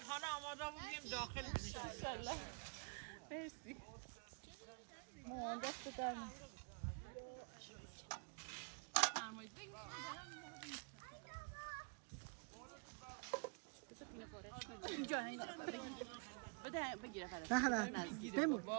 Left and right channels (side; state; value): left; quieter; 33.8 dB